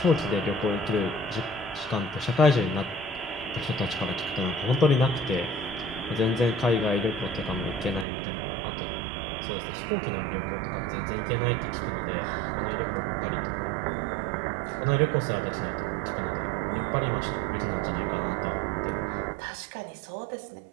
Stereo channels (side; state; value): left; drops out; at 8.1 s